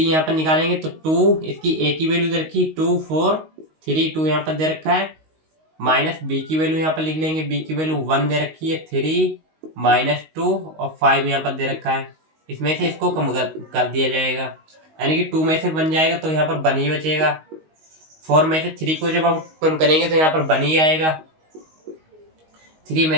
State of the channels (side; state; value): left; late; 19 ms